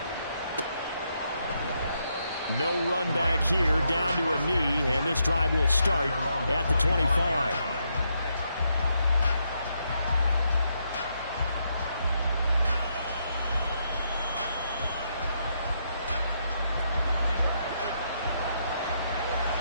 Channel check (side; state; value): both; inverted; correlation -0.78